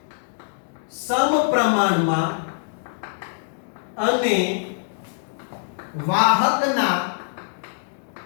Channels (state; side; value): silent; right; digital silence